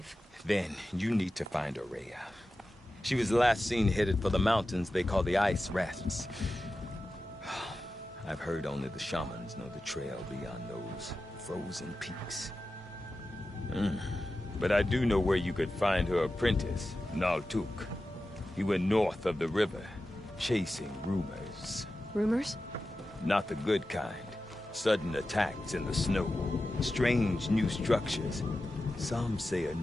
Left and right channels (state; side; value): normal; both; correlation 0.93